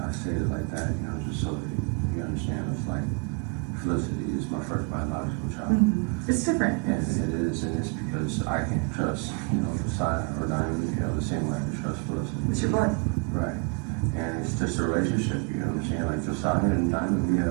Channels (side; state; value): left; quieter; 33.9 dB